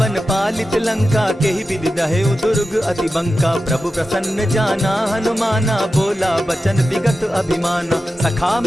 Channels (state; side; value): normal; both; correlation 0.92